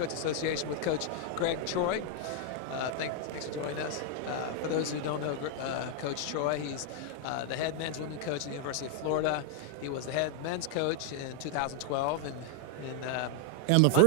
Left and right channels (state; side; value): different; both; correlation 0.00